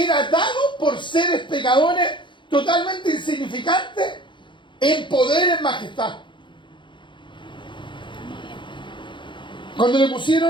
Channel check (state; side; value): late; right; 0.23 ms